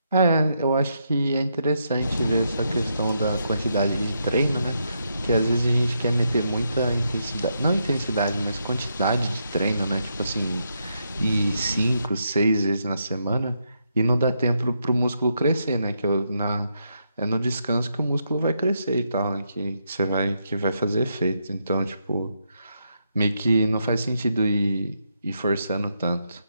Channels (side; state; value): both; inverted; correlation -0.80